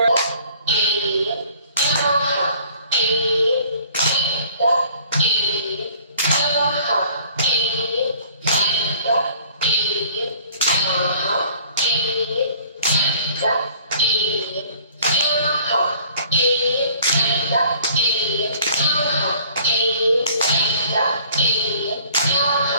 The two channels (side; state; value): both; inverted; correlation -0.54